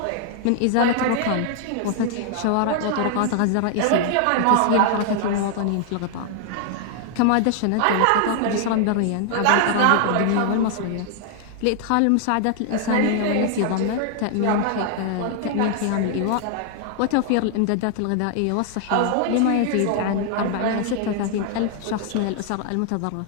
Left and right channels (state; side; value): different; both; correlation 0.00